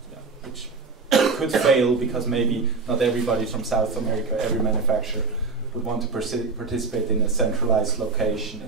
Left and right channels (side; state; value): left; quieter; 4.3 dB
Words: which could fail because maybe not everybody from South America, every manufacturer would want to participate in a centralized location